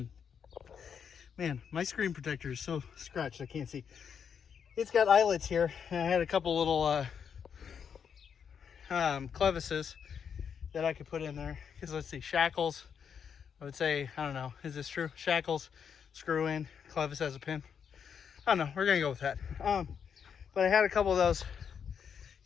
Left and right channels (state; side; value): quieter; right; 7.3 dB